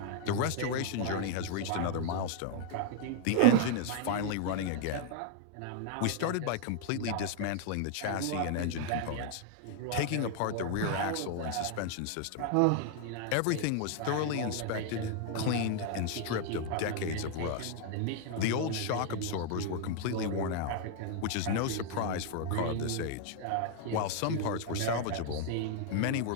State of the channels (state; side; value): different; both; correlation 0.00